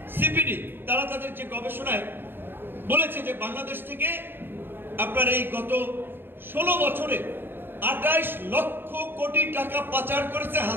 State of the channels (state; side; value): late; left; 0.10 ms